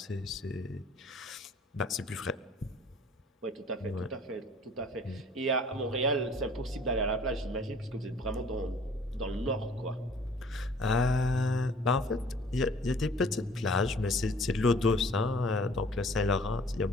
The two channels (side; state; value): both; normal; correlation 0.53